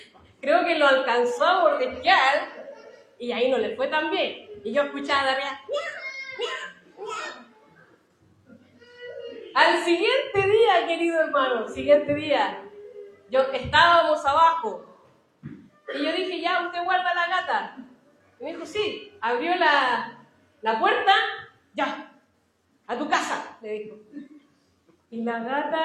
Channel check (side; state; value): both; identical; correlation 1.00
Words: Creo que lo alcanzó a mordisquear y ahí no le fue tan bien. Y yo escuchaba de arriba, al siguiente día, querido hermano, siguiente día, estábamos abajo y yo dije, ya, ¿usted guarda la gata? Y me dijo, sí. Abrió la puerta, ya, a tu casa, le dijo. Y la